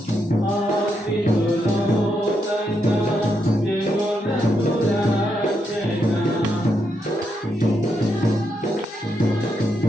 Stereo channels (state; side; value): normal; both; correlation 0.81